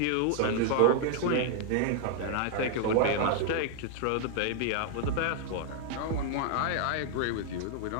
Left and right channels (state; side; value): different; both; correlation 0.00